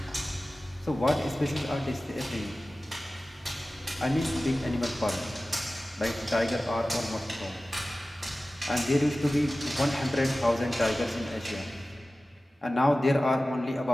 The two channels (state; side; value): normal; both; correlation 0.96